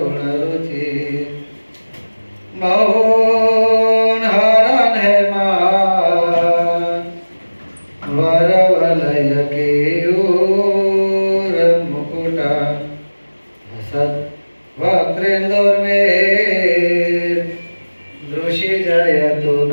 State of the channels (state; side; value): inverted; both; correlation -1.00